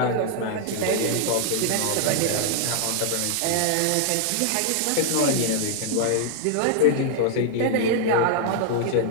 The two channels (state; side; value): different; both; correlation 0.00